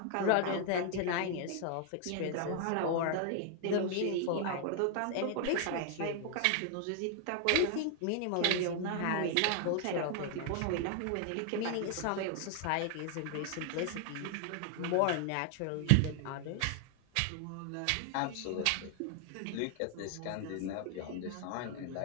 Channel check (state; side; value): different; both; correlation 0.00